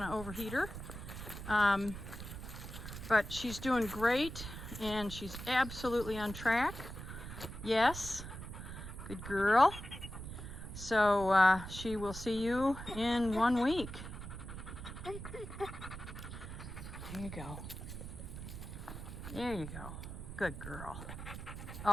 to overheat her. But she's doing great and she's absolutely on track. Yes. Good girl. So she will see you in 1 week. There you go. There you go. Good girl.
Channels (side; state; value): right; noise; rumble, 9 dB below the sound